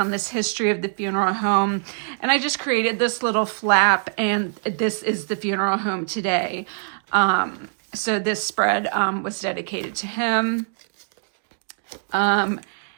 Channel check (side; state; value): left; silent; digital silence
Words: this history of the funeral home, and I just created this little flap, and this is the funeral home today. So this spread was dedicated to him.